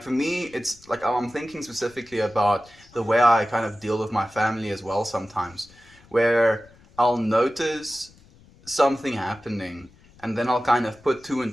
for me, it's like I'm thinking specifically about the way I kind of deal with my family as well sometimes, where I'll notice something happening and then I'll kind of put 2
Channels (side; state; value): left; noise; rumble, 26 dB below the sound